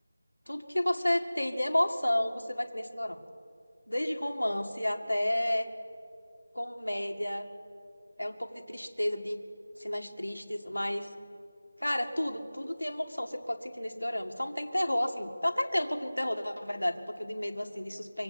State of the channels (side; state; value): both; inverted; correlation -0.99